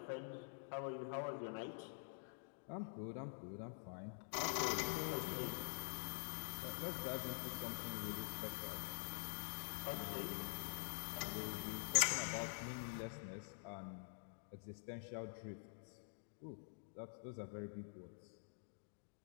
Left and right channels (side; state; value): right; silent; digital silence